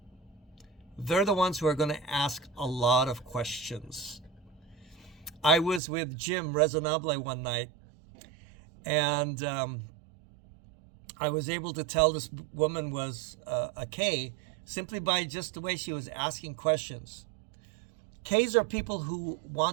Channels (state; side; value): drops out; left; at 5.8 s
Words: They're the ones who are going to ask a lot of questions. I was with Jim Resonable one night, and I was able to tell this woman was a K simply by just the way she was asking questions. Ks are people who